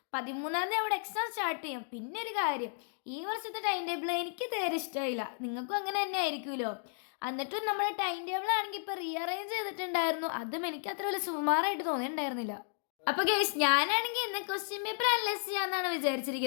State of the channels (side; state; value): right; silent; digital silence